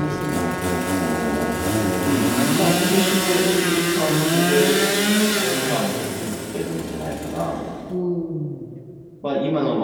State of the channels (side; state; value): both; identical; correlation 1.00